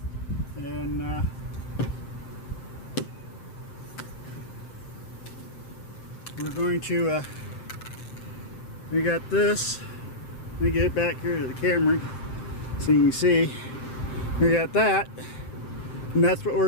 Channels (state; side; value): late; right; 7.7 ms